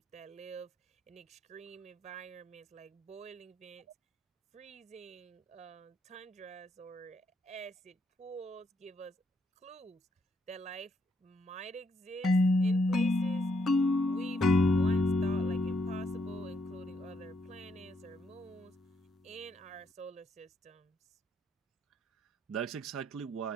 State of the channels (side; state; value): both; normal; correlation 0.76